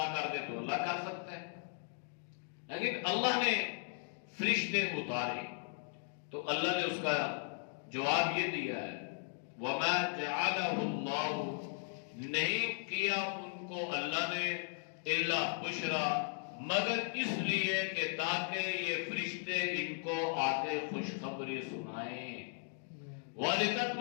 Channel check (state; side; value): silent; right; 53 dB below the other